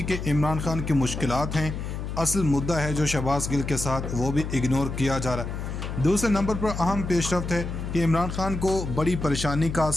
कि इमरान खान की मुश्किलात हैं, असल मुद्दा है जो शहबाज गिल के साथ वो भी इग्नोर किया जा रहा है। दूसरे नंबर पर अहम पेशरफ्त है कि इमरान खान को बड़ी परेशानी का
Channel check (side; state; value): left; noise; hum, 5 dB below the sound